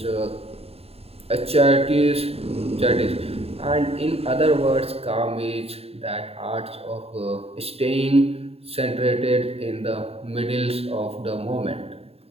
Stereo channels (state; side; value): late; left; 0.29 ms